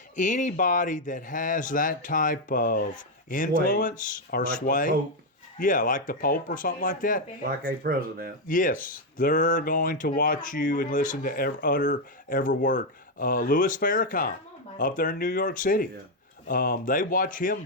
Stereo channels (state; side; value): normal; both; correlation 0.03